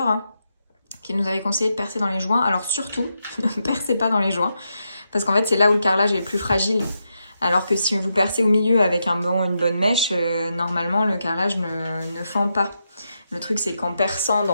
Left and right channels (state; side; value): inverted; both; correlation -0.84